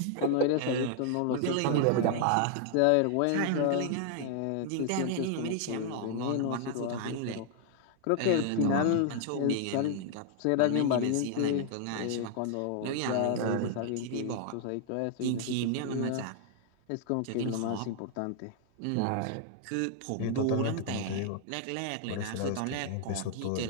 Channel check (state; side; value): different; both; correlation 0.00